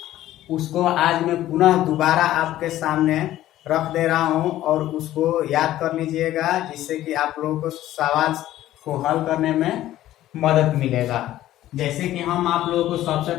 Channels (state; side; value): quieter; right; 14.0 dB